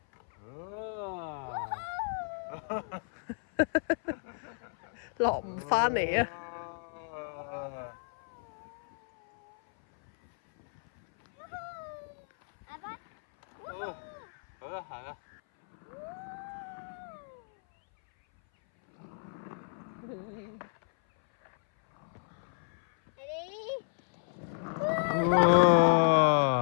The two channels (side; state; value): right; silent; 56 dB below the other